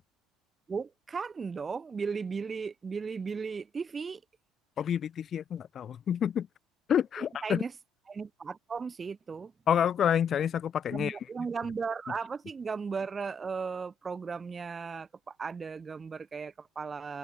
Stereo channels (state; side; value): quieter; right; 3.1 dB